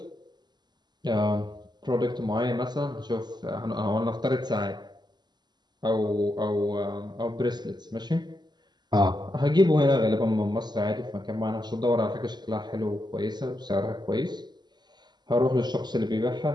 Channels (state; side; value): late; left; 0.21 ms